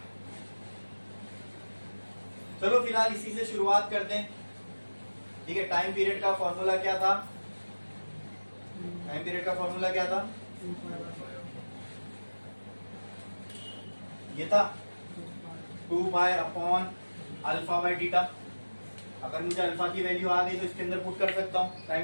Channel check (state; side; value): inverted; both; correlation -1.00